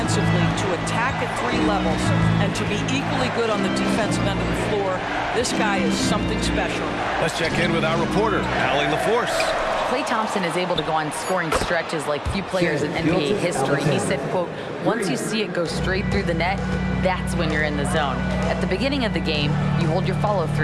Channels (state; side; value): identical; both; correlation 1.00